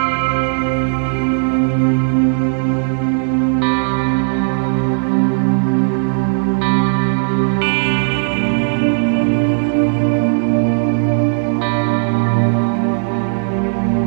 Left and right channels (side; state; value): left; silent; digital silence